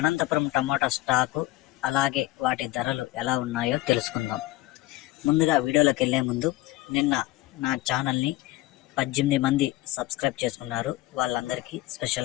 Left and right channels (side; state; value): right; quieter; 17.9 dB